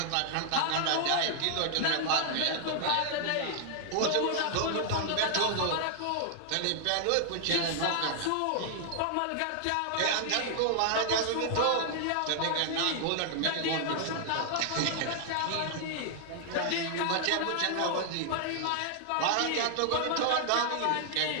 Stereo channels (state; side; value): different; both; correlation 0.00